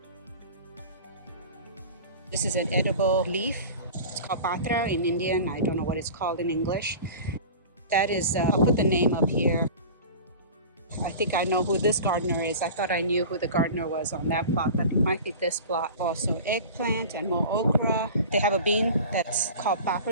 This is an edible leaf. It's called patra in Indian. I don't know what it's called in English. That is, I'll put the name up here. I think I know who this gardener is. I thought I knew who the gardener was on that plot, but it might be this plot. Also eggplant and more okra. They have a bean that's called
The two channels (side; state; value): both; inverted; correlation -0.36